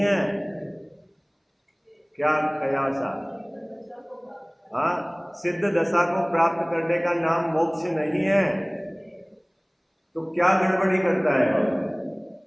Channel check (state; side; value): identical; both; correlation 1.00